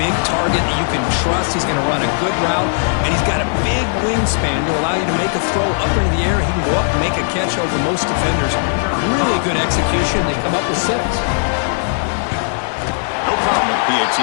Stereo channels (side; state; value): right; silent; digital silence